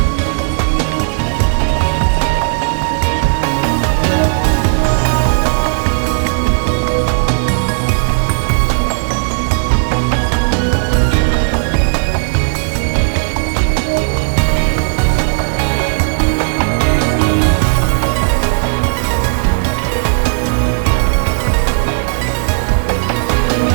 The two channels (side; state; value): left; silent; digital silence